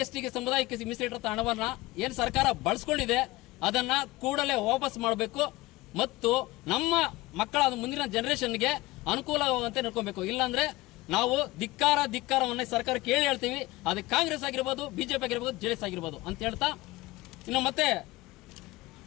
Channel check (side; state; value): right; quieter; 19.9 dB